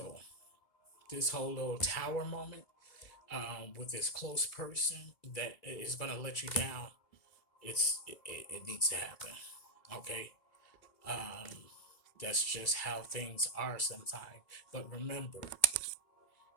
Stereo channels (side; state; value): right; late; 2.3 ms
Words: this whole little tower moment with this close person that is going to let you down, it needs to happen, okay? Um, that's just how things are sometimes. But remember,